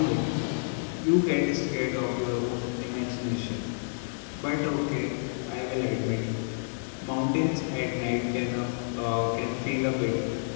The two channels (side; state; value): right; silent; digital silence